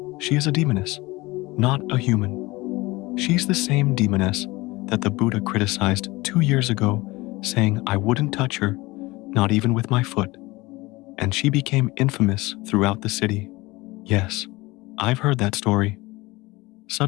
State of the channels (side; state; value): right; quieter; 21.6 dB